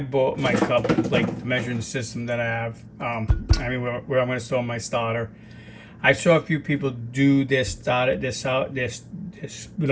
cup, like the measuring system that I have. Where I'm gonna store my starter. I saw a few people do their starter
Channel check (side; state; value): both; identical; correlation 1.00